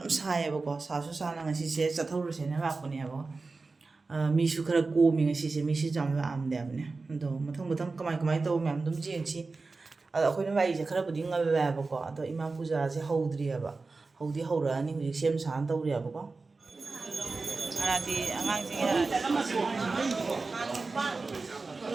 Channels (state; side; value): quieter; left; 3.9 dB